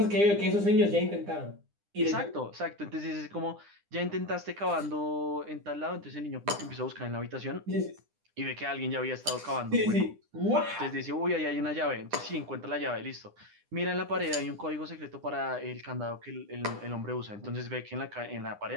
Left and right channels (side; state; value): left; late; 9.9 ms